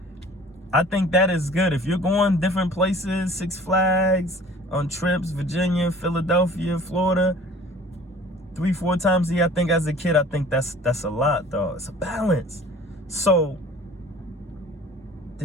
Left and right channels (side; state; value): both; normal; correlation 0.48